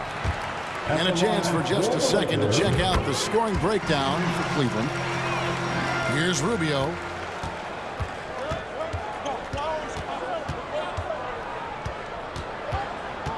And a chance for just a second to check out the scoring breakdown for Cleveland. Here's Rubio.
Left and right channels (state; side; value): identical; both; correlation 1.00